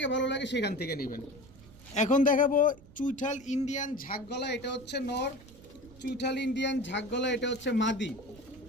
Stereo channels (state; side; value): noise; right; rumble, 21 dB below the sound